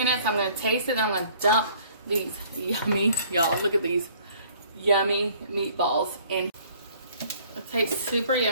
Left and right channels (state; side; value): inverted; both; correlation -0.57